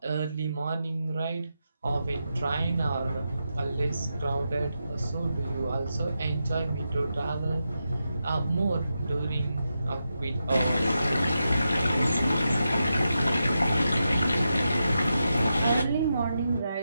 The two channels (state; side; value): inverted; both; correlation -0.88